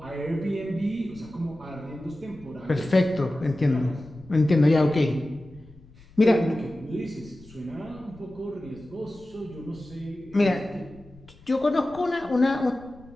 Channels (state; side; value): noise; left; rumble, 24 dB below the sound